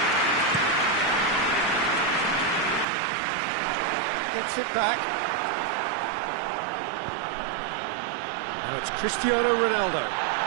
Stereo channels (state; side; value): drops out; left; at 2.9 s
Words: Gets it back. Now it's Cristiano Ronaldo.